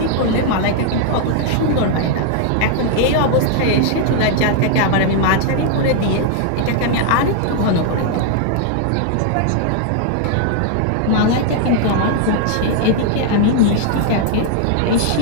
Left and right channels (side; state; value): both; different; correlation 0.00